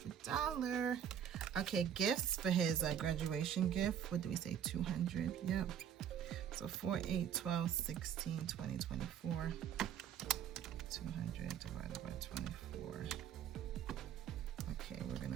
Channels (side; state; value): left; quieter; 9.1 dB